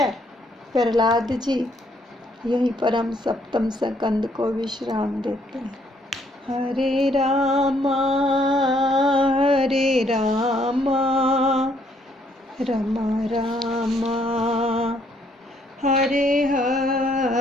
प्रहलाद जी। यहीं पर हम सप्तम स्कंद को विश्राम देते हैं। हरे रामा रामा रामा हरे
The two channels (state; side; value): normal; both; correlation 0.68